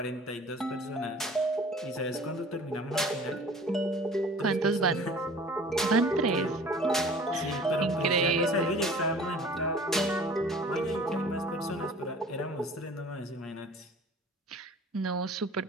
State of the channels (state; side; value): normal; both; correlation 0.47